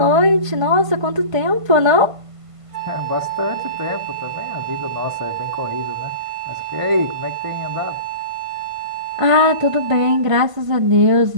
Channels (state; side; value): late; left; 1.5 ms